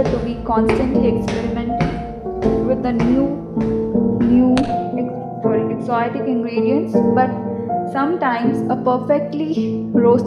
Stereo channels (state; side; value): identical; both; correlation 1.00